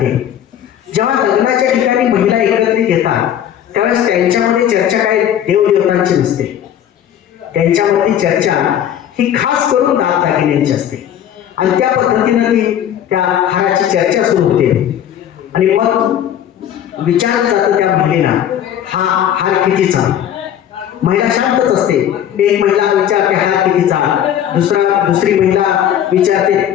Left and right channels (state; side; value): quieter; right; 10.3 dB